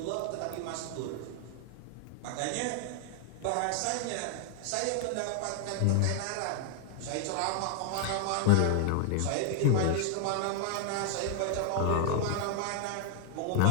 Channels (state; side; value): different; both; correlation 0.00